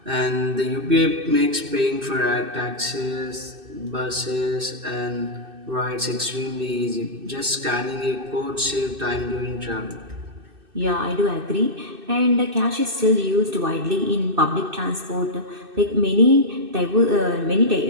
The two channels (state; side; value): late; left; 2.6 ms